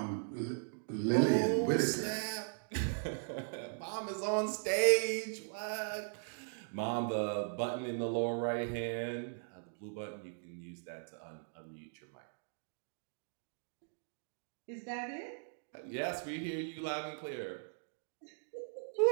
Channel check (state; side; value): silent; left; digital silence